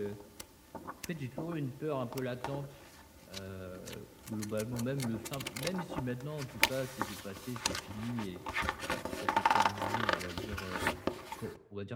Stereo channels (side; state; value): both; identical; correlation 1.00